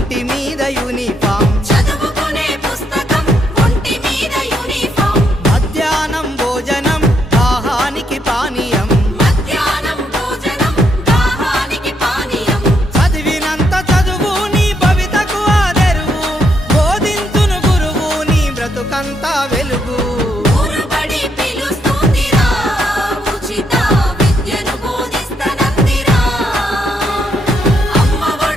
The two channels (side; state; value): both; normal; correlation 0.76